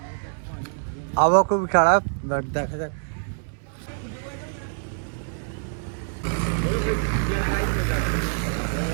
আবহাওয়া খুবই খারাপ, বাট দেখা যাক।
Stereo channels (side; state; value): left; silent; 61 dB below the other